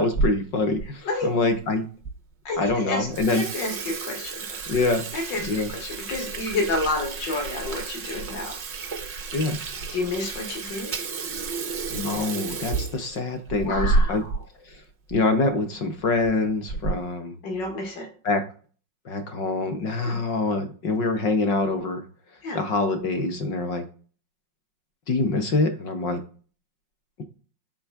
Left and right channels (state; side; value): late; right; 5.5 ms